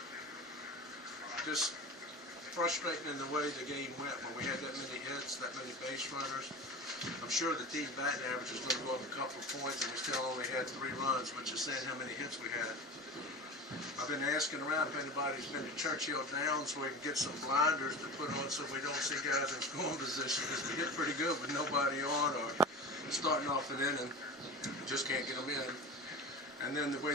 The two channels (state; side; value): normal; both; correlation 0.32